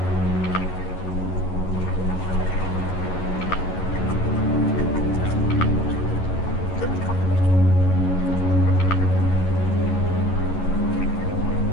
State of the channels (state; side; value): late; right; 11 ms